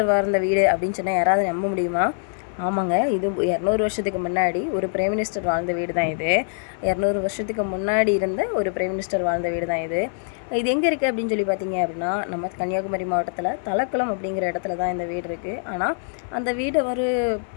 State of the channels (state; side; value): silent; right; 57 dB below the other